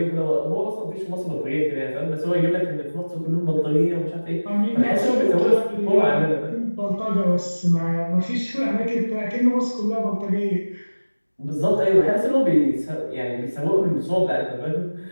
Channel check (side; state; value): both; inverted; correlation -1.00